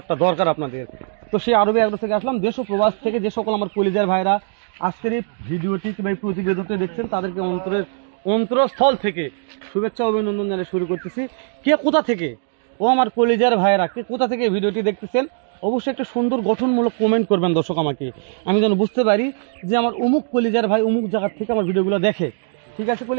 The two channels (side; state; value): left; silent; 64 dB below the other